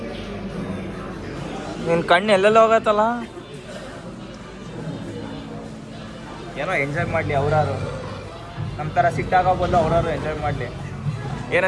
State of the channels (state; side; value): identical; both; correlation 1.00